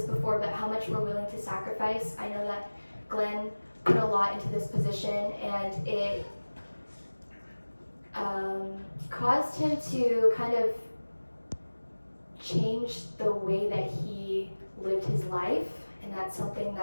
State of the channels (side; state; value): both; inverted; correlation -1.00